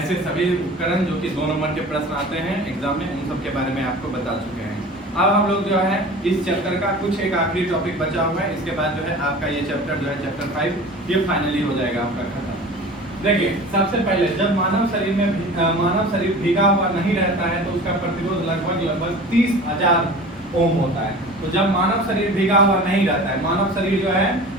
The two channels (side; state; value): both; normal; correlation 0.39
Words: सभी उपकरण जो कि 2 नंबर के प्रश्न आते हैं एग्जाम में, उन सब के बारे में आपको बता चुके हैं। अब हम लोग जो है इस चैप्टर का कुछ एक आखिरी टॉपिक बचा हुआ है, इसके बाद जो है आपका ये चैप्टर जो है चैप्टर 5 ये फाइनली हो जाएगा आपका खत्म। देखिए सबसे पहले जब मानव शरीर भीगा हुआ नहीं रहता है तो उसका प्रतिरोध लगभग 30,000 ओम होता है। तो जब मानव शरीर भीगा हुआ नहीं रहता है, मानव शरीर जो है